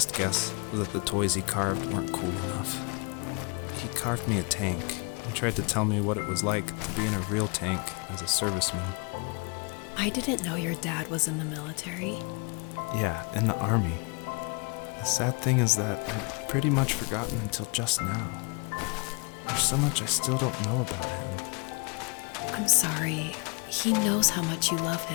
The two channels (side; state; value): right; quieter; 32.2 dB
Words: guess was that the toys he carved weren't cool enough. He carved me a tank and tried to tell me what it was like to be in a real tank as a serviceman. I didn't know your dad was in the military. Yeah, in the army. The sad thing is that I'd pretty much forgotten until just now. There's so much I still don't know about him. I'm sorry. He knows how much you love